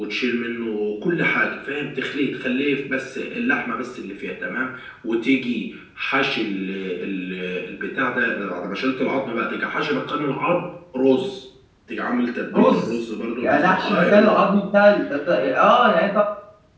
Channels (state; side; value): identical; both; correlation 1.00